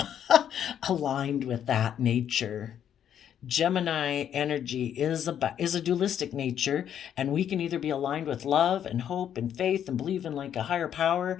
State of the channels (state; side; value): quieter; right; 9.5 dB